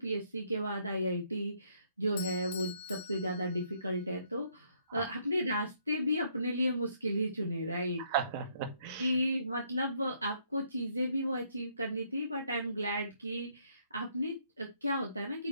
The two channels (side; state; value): both; inverted; correlation -0.69